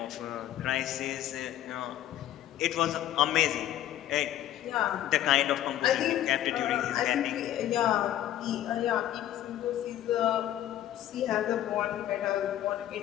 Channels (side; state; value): right; quieter; 12.4 dB